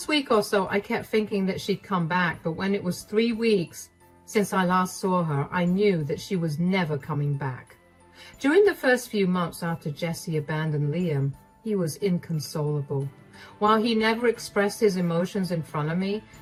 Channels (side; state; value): both; identical; correlation 1.00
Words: week or so, I kept thinking that she'd come back, but when it was 3 weeks since I last saw her, I knew that she was never coming back. During the first few months after Jessie abandoned Liam, he was inconsolable. While he never expressed his emotions in front of me,